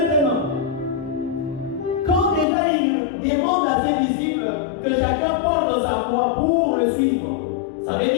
quand déjà il demande à ses disciples que chacun porte sa foi pour le suivre, ça veut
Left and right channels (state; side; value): drops out; right; at 2.5 s